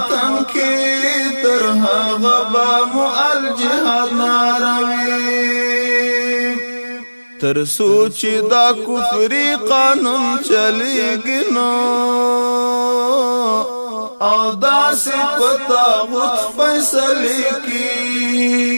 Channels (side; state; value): both; inverted; correlation -1.00